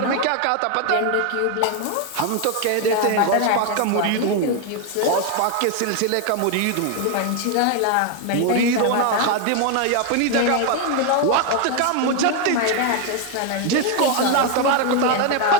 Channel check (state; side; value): different; both; correlation 0.01